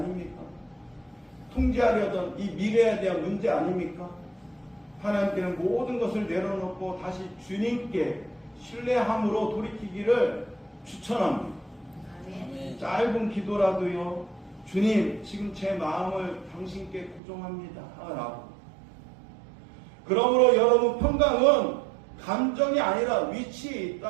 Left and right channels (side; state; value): left; drops out; at 17.2 s